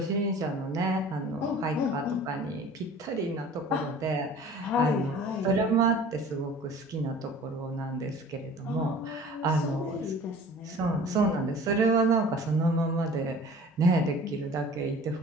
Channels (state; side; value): normal; both; correlation 0.45